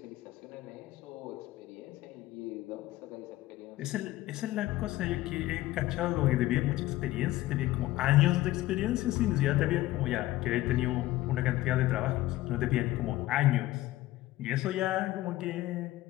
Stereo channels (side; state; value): right; quieter; 16.5 dB